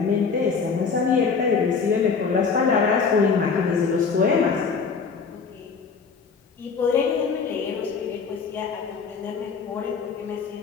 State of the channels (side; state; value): right; quieter; 5.4 dB